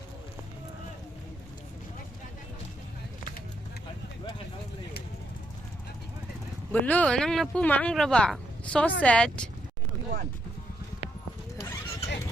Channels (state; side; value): normal; both; correlation 0.77